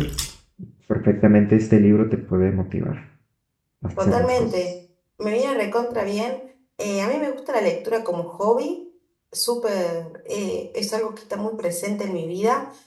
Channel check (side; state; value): both; identical; correlation 1.00